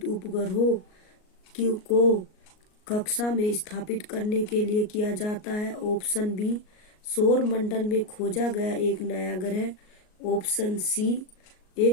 उपग्रहों को कक्षा में स्थापित करने के लिए किया जाता है। ऑप्शन बी सौर मंडल में खोजा गया एक नया ग्रह। ऑप्शन सी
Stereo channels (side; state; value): right; late; 38 ms